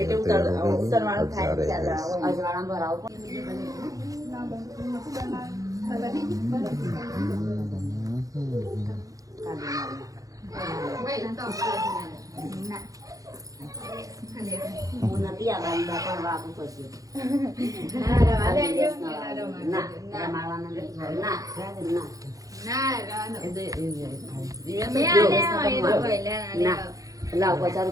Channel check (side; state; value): left; late; 0.17 ms